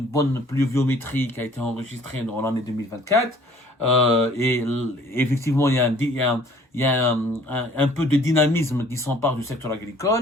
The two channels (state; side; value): normal; both; correlation 0.55